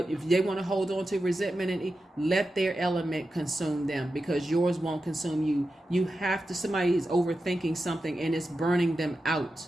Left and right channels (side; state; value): both; normal; correlation 0.91